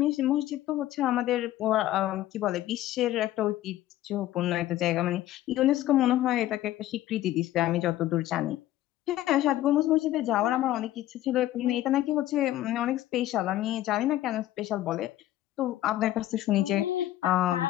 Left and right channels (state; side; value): quieter; right; 14.2 dB